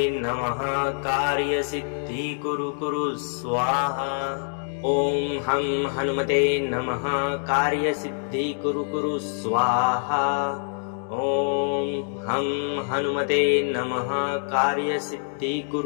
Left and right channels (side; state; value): right; silent; 62 dB below the other